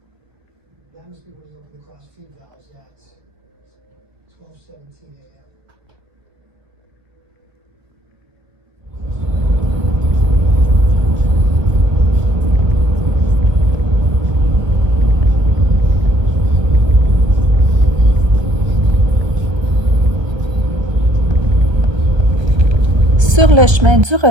That must be when he opened the cross feed valves at 12:17 a.m. Sur le chemin du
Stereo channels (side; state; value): left; late; 1.3 ms